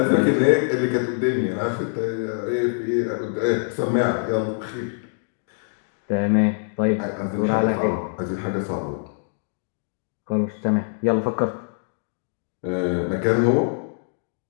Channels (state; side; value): silent; right; digital silence